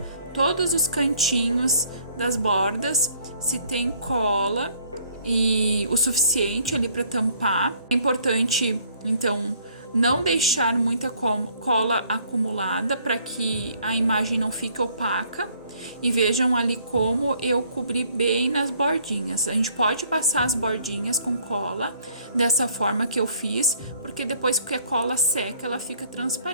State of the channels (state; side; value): inverted; both; correlation -0.61